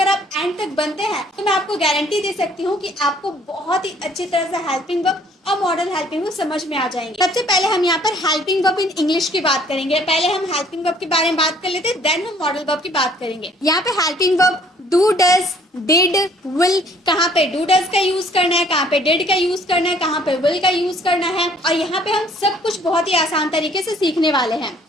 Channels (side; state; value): both; normal; correlation 0.59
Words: आप एंड तक बनते हैं तो मैं आपको गारंटी दे सकती हूँ कि आपको बहुत ही अच्छी तरह से हेल्पिंग वर्ब और मॉडल हेल्पिंग वर्ब समझ में आ जाएंगे। सबसे पहले हम यहाँ पर हेल्पिंग वर्ब इन इंग्लिश की बात करेंगे। पहले हम हेल्पिंग वर्ब के बारे में बात कर लेते हैं, देन हम मॉडल वर्ब की बात करेंगे। यहाँ पे helping verb do, does, did, will, कहाँ पे डू डज का यूज करना है, कहाँ पे डिड का यूज करना है, कहाँ पे विल का यूज करना है, और यहाँ पे हम सब कुछ बहुत ही आसान तरीके से सीखने वाले हैं।